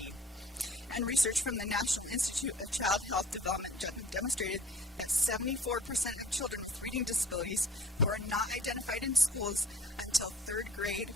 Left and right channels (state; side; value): normal; both; correlation 0.50